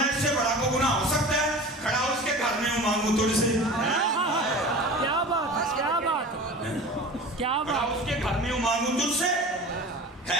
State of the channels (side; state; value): both; normal; correlation 0.36